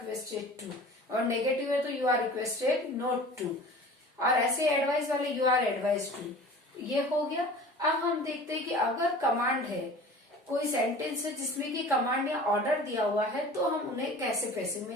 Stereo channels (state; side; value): normal; both; correlation 0.41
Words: टू, और नेगेटिव है तो you are requested not to, और ऐसे एडवाइस वाले यू आर एडवाइज टू। ये हो गया। अब हम देखते हैं कि अगर कमांड है कोई सेंटेंस है जिसमें कि कमांड या ऑर्डर दिया हुआ है तो हम उन्हें कैसे पैसिव